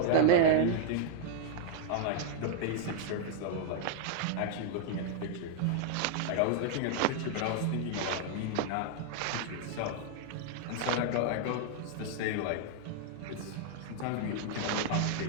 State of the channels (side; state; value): both; different; correlation -0.01